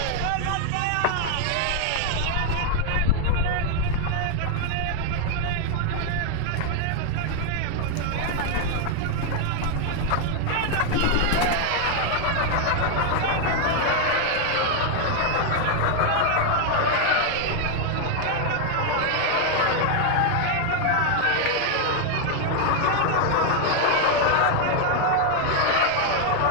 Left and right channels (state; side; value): different; both; correlation 0.00